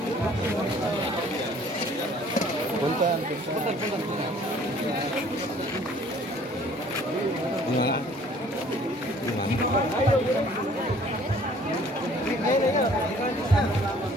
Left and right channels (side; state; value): both; normal; correlation 0.55